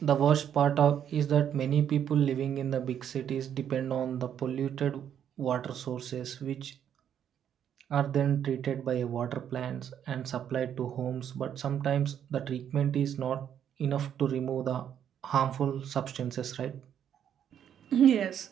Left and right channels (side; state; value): left; quieter; 9.3 dB